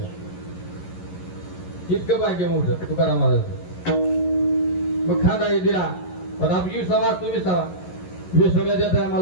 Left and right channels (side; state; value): right; late; 11 ms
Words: इतकं भाग्य मोठं तुकाराम महाराज. मग खांदा दिला. पण आपली विसावा तुम्ही विसावा. विसाव्या देता